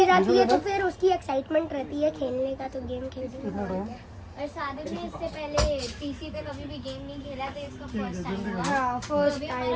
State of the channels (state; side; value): identical; both; correlation 1.00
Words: आती है तो फिर उसकी एक्साइटमेंट रहती है खेलने का, तो गेम खेलते और सादिक ने इससे पहले पीसी पे कभी भी गेम नहीं खेला, तो इसका फर्स्ट टाइम होगा। हाँ तो फर्स्ट अभी